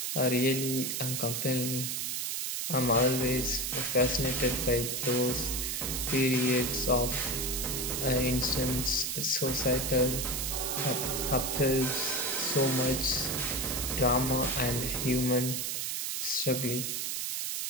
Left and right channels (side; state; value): right; noise; hiss, 1 dB below the sound